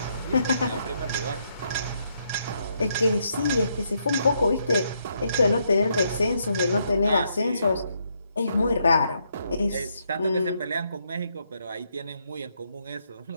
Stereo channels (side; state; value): both; inverted; correlation -0.76